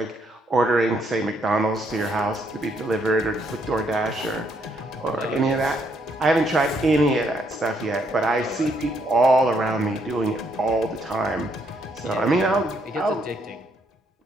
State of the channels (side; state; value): both; normal; correlation 0.72